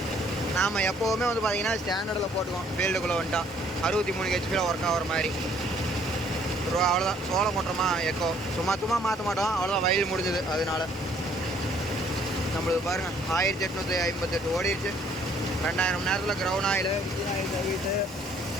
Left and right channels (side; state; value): both; normal; correlation 0.62